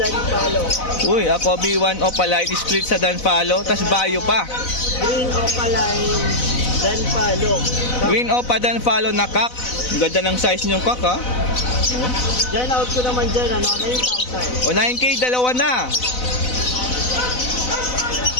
palo. Uy, ako B1 opaline split sa Dan Follow, tas bayo pa. Green Opaline dan palo. Green opa Dan Follow na kak. Ang ganda ng size niyong kak, ha? Diyan, out ko naman dyan, 9,000. O, 9K, dalawa na.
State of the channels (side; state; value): right; late; 4.0 ms